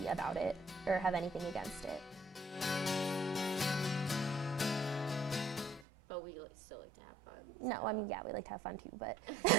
about it or have anything against it. But we still like to have fun. No, so. I mean, yeah, we like to have fun too, but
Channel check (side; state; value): left; drops out; at 5.9 s